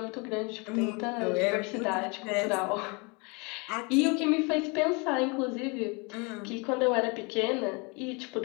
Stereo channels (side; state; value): right; quieter; 30.4 dB